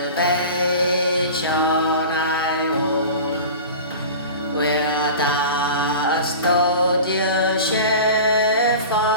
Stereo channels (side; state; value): both; inverted; correlation -0.35